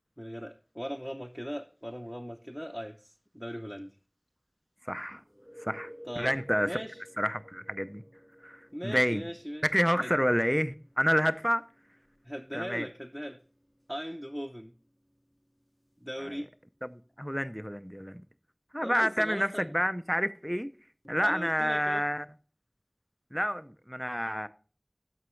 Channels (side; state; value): both; identical; correlation 1.00